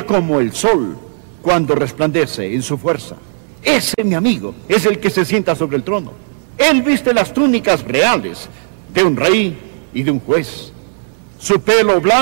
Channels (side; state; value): left; silent; digital silence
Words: como el sol cuando resplandece en su fuerza. Ese, mi amigo, es el que se sienta sobre el trono. Él viste las túnicas reales de un rey y de un juez. Su pelo